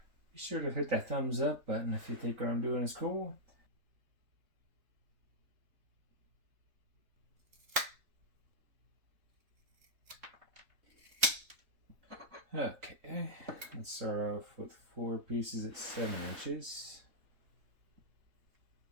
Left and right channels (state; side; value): late; left; 3.7 ms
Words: Be sure to hit that thumbs up button if you think what I'm doing is cool. Okay, let's start off with 4 pieces at 7 inches.